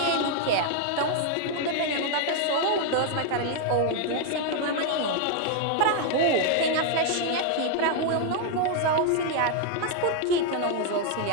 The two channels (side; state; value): both; different; correlation 0.00